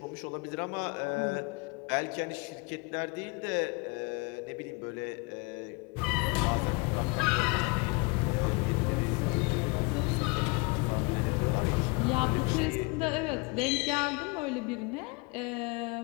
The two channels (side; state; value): right; quieter; 28.5 dB